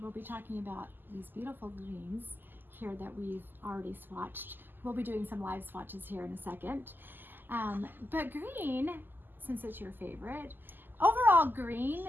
be talking about these beautiful greens here that we've already swatched. We'll be doing some live swatches here in a second. But green, since it's your favorite, overall green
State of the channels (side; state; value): left; late; 0.091 ms